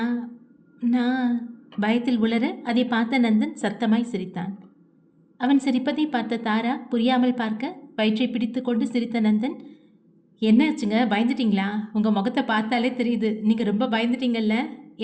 நான் பயத்தில் உளர அதை பார்த்த நந்தன் சத்தமாய் சிரித்தான். அவன் சிரிப்பதை பார்த்த தாரா புரியாமல் பார்க்க வயிற்றை பிடித்து கொண்டு சிரித்த நந்தன், என்னாச்சுங்க, பயந்துட்டீங்களா? உங்கள் முகத்தை பார்த்தாலே தெரியுது, நீங்கள் ரொம்ப பயந்துட்டீங்கல்ல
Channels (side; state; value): both; identical; correlation 1.00